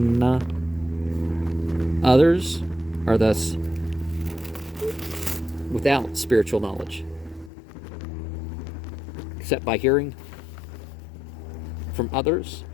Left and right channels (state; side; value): drops out; right; at 7.5 s